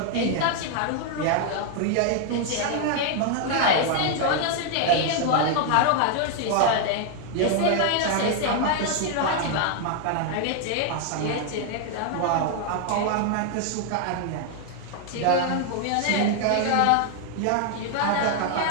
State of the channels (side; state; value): both; different; correlation 0.00